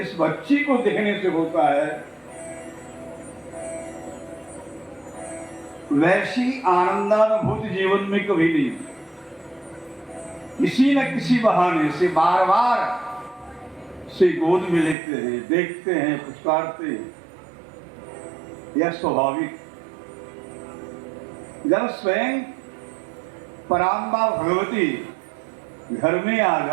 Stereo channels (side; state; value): left; drops out; at 15.0 s